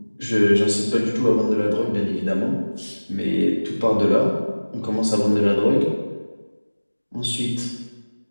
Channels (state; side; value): inverted; both; correlation -1.00